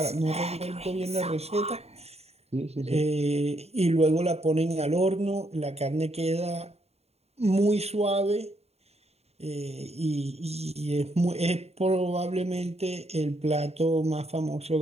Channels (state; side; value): late; left; 0.30 ms